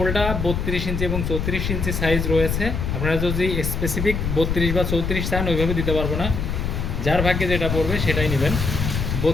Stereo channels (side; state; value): left; noise; rumble, 2 dB below the sound